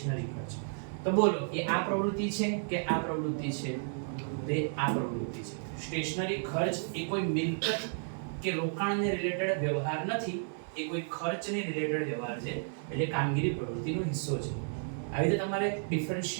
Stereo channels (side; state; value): left; silent; 56 dB below the other